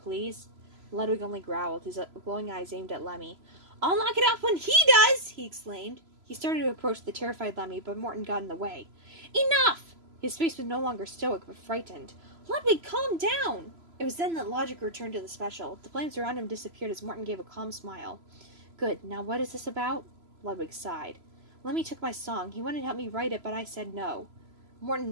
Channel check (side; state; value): left; late; 3.0 ms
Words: Ludwig only growled, his glowing eyes aimed at Lemmy. "I'll knock it off when he does!" he exclaimed. He started to approach the terrified Lemmy, but Morton got in the way. "Enough!" His face was no longer stoic, but frightened. "Ludwig, calm down!" It was then that logic returned to the special. The flames around him disappeared as Morton gave a calm smile. "Good. Now what is this about?" Ludwig sighed. "Lemmy took my song. He wanted to help me write it, but I said no." Morton